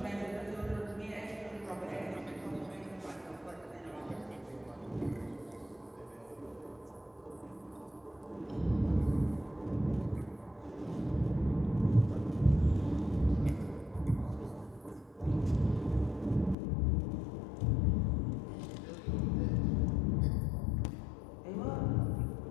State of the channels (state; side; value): drops out; right; at 16.6 s